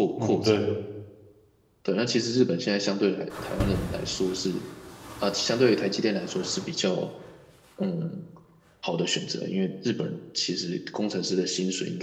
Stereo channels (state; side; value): identical; both; correlation 1.00